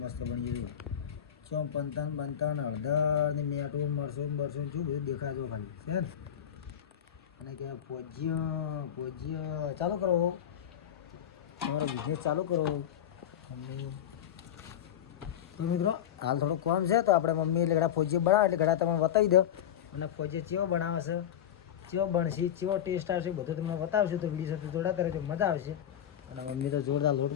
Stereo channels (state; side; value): quieter; right; 9.9 dB